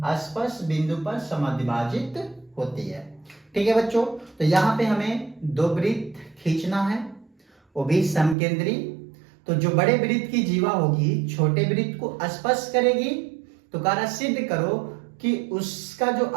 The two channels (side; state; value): left; drops out; at 8.3 s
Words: स्पर्श बिंदु पर समद्विभाजित होती है। ठीक है बच्चों, तो यहाँ पे हमें 2 वृत्त खींचना है, वो भी समकेंद्री। तो जो बड़े वृत्त की जीवा होगी छोटे वृत्त को स्पर्श करेगी, तो कार्य सिद्ध करो कि उसका जो